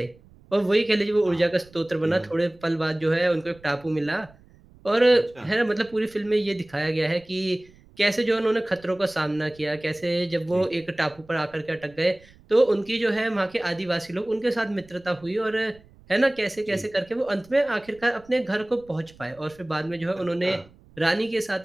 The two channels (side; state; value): right; noise; rumble, 26 dB below the sound